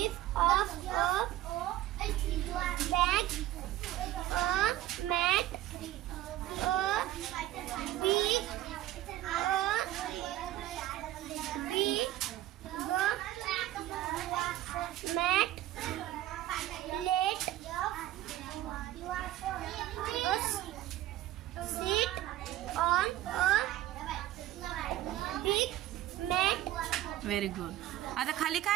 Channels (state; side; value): quieter; left; 14.5 dB